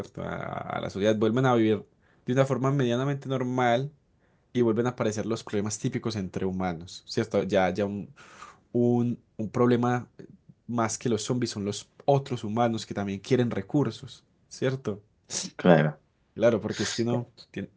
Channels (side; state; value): both; identical; correlation 1.00